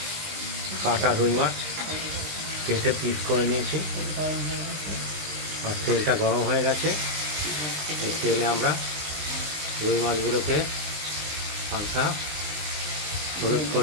কাটা রুই মাছ কেটে পিস করে নিয়েছি। আর তেলটা গরম হয়ে গেছে। এই তেলে আমরা রুই মাছগুলোকে হালকা হলুদ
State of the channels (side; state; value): left; late; 20 ms